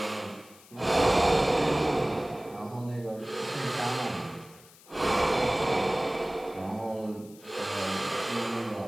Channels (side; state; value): left; noise; hiss, 23 dB below the sound